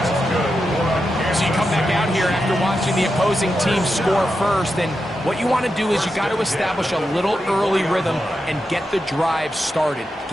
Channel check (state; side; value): normal; both; correlation 0.88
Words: So you come back out here after watching the opposing team score first, and what you want to do is you got to establish a little early rhythm and get the drive started.